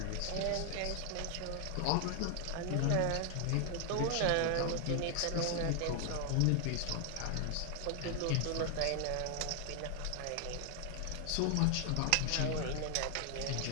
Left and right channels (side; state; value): both; different; correlation 0.00